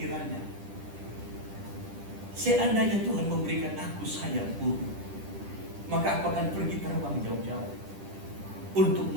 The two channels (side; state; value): left; late; 10 ms